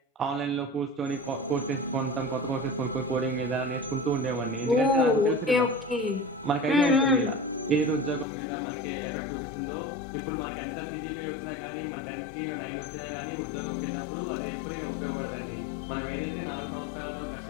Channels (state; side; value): drops out; right; at 8.2 s